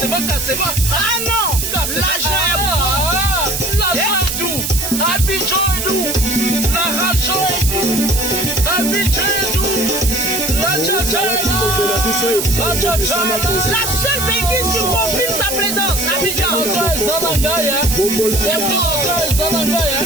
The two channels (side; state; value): right; noise; hiss, 3 dB below the sound